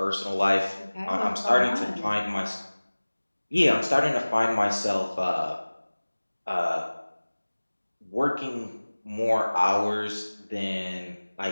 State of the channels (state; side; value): inverted; both; correlation -1.00